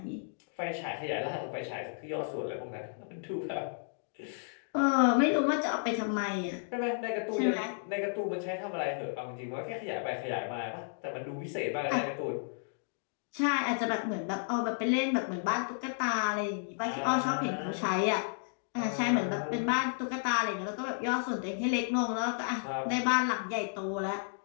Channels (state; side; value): silent; right; digital silence